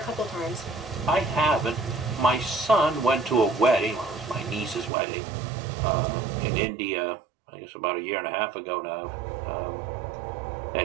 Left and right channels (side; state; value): left; drops out; at 4.9 s